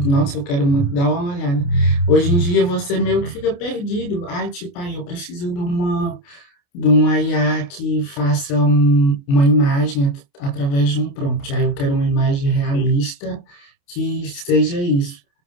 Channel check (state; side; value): late; right; 28 ms